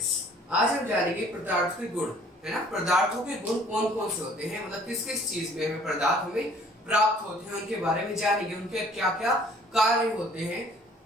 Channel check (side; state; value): both; normal; correlation 0.55